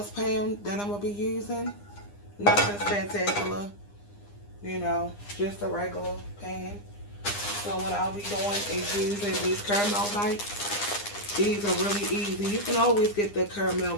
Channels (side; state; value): right; late; 9.8 ms